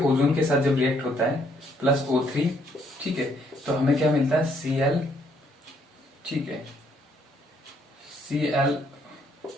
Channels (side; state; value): both; normal; correlation 0.69